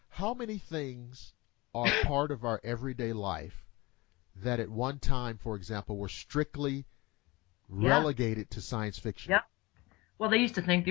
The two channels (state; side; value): quieter; right; 22.6 dB